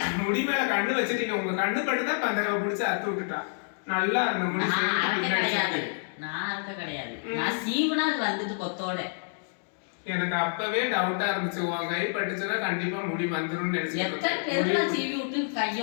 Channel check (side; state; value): right; silent; digital silence